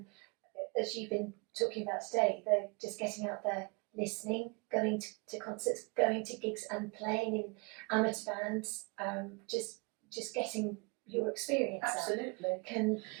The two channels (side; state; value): left; quieter; 31.3 dB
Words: as you've been talking about today, they're just getting out there, listening, going to concerts, going to gigs and playing in amateur bands, just getting your experience Absolutely. can